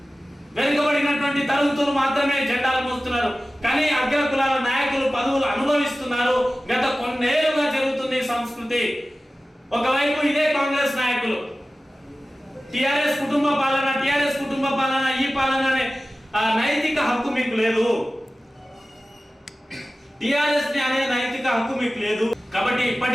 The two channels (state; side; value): normal; both; correlation 0.96